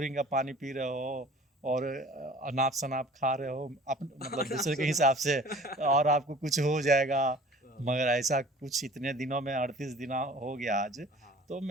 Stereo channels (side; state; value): both; normal; correlation 0.47